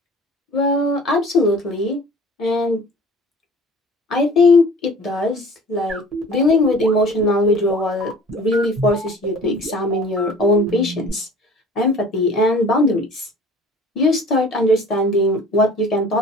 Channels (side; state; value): both; normal; correlation 0.46